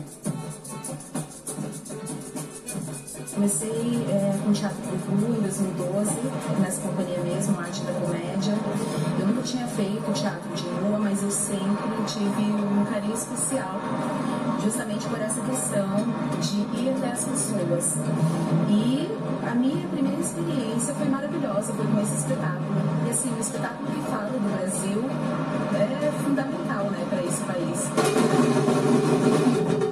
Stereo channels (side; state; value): both; identical; correlation 1.00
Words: Comecei com teatro de rua em 2012, nessa companhia mesmo, Arte da Comédia. Eu nunca tinha feito teatro de rua, mas eu sempre tive um carinho especial, justamente por essa questão de ir até as pessoas. E a minha primeira experiência foi maravilhosa, foi com esse espetáculo. E assim, um espetáculo que fala do Brasil é fundamental, né, para esse país.